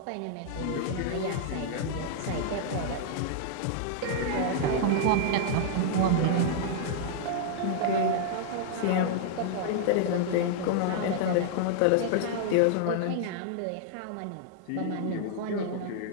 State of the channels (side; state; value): both; different; correlation -0.01